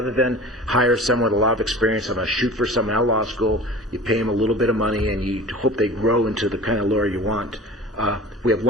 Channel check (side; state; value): both; normal; correlation 0.39